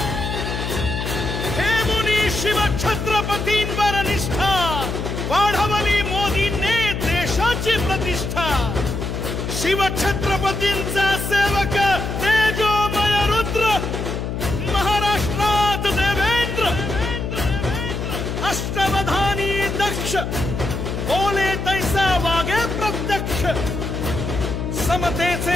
हे मुनी शिवछत्रपतींवर निष्ठा वाढवली मोदींनी देशाची प्रतिष्ठा. शिवछत्रपतींचा सेवक तेजोमय रुद्र, महाराष्ट्रात देवेंद्र, अष्टवधानी दक्ष, बोले तैसा वागे प्रत्यक्ष.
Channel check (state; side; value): noise; left; hum, 4 dB below the sound